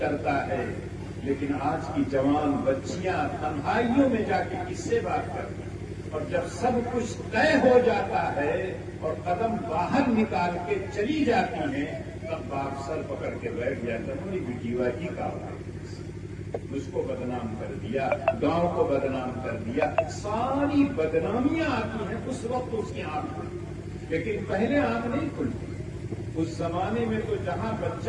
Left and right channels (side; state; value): both; identical; correlation 1.00